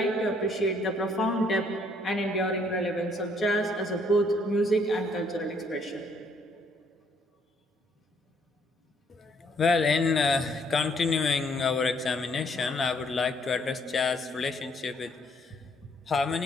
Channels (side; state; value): both; normal; correlation 0.67